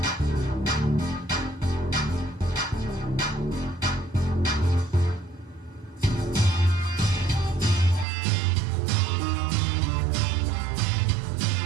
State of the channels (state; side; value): drops out; left; at 8.1 s